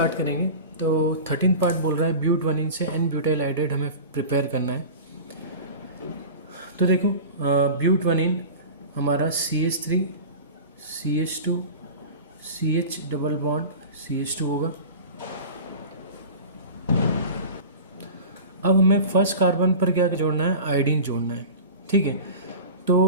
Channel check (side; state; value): both; inverted; correlation -0.34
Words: करेंगे। तो 13 पार्ट बोल रहा है ब्यूट 1 से एन ब्यूटाइल आइडाइड हमें प्रिपेयर करना है। तो देखो, ब्यूट 1 हमारा CH3 CH2 CH double bond CH2 होगा। अब हमें फर्स्ट कार्बन पर क्या जोड़ना है, आयोडीन जोड़ना है। ठीक है,